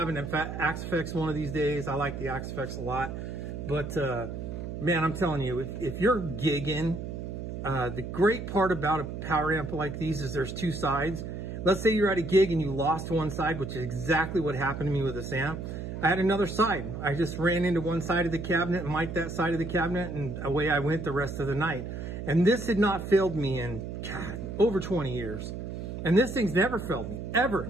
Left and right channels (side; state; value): right; noise; hum, 7 dB below the sound